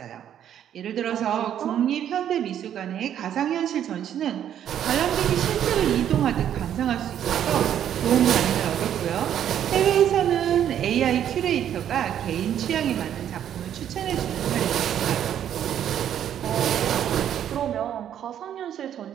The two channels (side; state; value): left; quieter; 10.1 dB